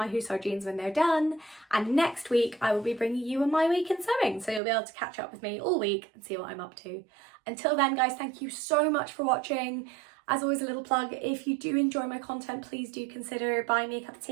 Hussard jeans when they're done. And next week I will be bringing you my week in sewing. So you'll be able to catch up with me all week and see what I'm up to. Until then guys, thank you so much for watching. As always, a little plug, if you do enjoy my content, please do consider buying me a cup of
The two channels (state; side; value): drops out; left; at 4.6 s